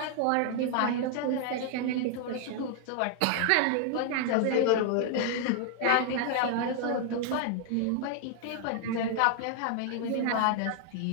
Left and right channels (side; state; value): both; different; correlation 0.00